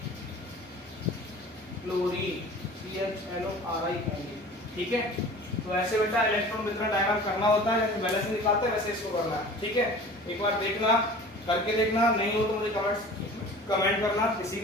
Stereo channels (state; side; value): normal; both; correlation 0.42